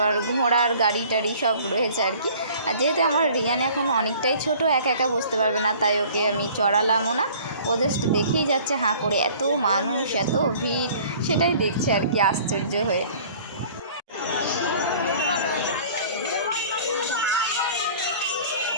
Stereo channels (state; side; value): inverted; both; correlation -0.49